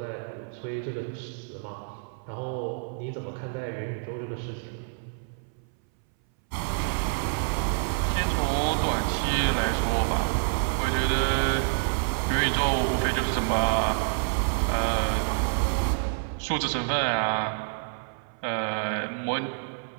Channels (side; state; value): left; silent; 59 dB below the other